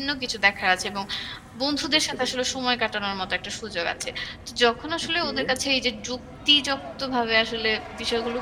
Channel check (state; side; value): identical; both; correlation 1.00